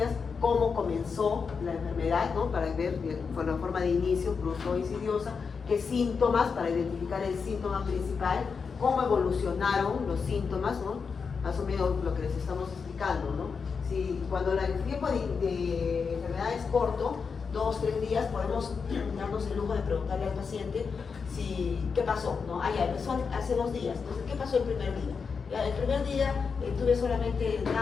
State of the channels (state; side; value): quieter; right; 5.5 dB